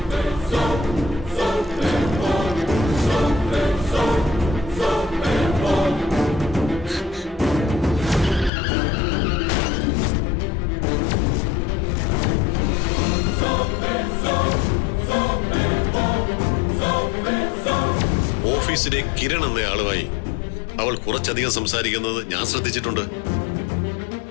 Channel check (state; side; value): drops out; right; at 8.5 s